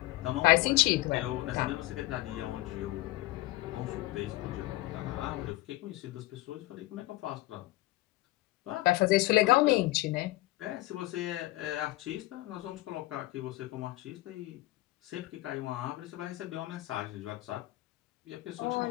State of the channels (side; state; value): right; quieter; 18.9 dB